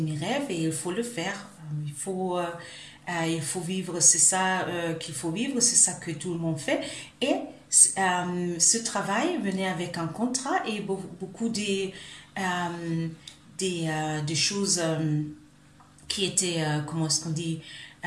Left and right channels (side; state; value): both; identical; correlation 1.00